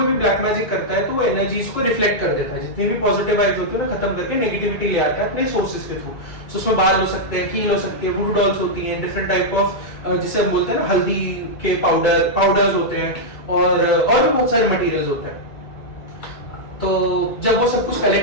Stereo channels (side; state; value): right; late; 2.3 ms